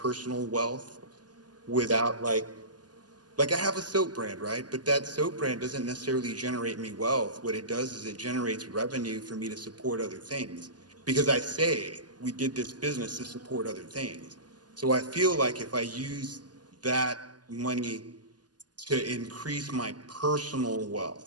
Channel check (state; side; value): late; left; 0.69 ms